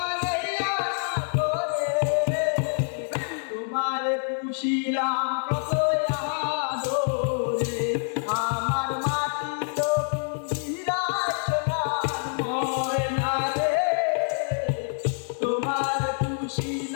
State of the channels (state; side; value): silent; right; digital silence